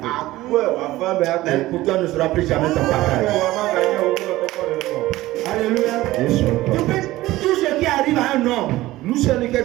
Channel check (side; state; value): left; quieter; 17.1 dB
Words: Mais pour toi ne sera plus jamais ton partage. Alléluia. Tout ce qui arrive à un homme